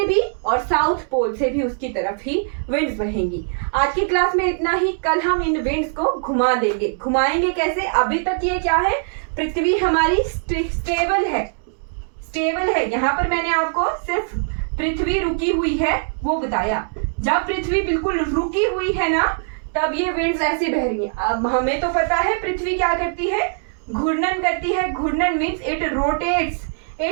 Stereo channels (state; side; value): silent; left; digital silence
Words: भी और साउथ पोल से भी उसकी तरफ ही विंड्स बहेंगी। आज की क्लास में इतना ही। कल हम इन विंड्स को घुमा देंगे। घुमाएंगे कैसे, अभी तक ये क्या है, पृथ्वी हमारी स्टेबल है। यहाँ पर मैंने आपको सिर्फ पृथ्वी रुकी हुई है वो बताया। जब पृथ्वी बिल्कुल रुकी हुई है ना, तब ये विंड्स ऐसे बह रही हैं। अब हमें तो पता है पृथ्वी क्या करती है, घूर्णन करती है। घूर्णन means